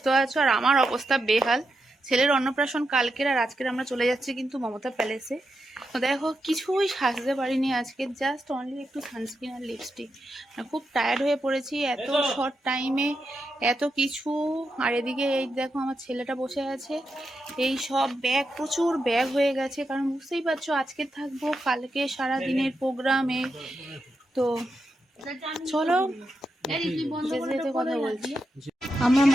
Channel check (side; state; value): both; normal; correlation 0.86